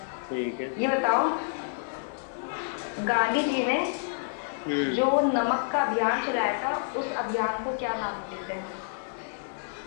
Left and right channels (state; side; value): silent; right; digital silence